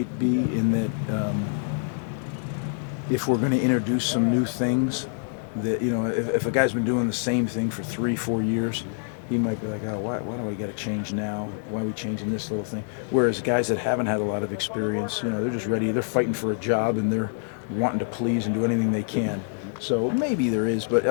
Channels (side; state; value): right; silent; digital silence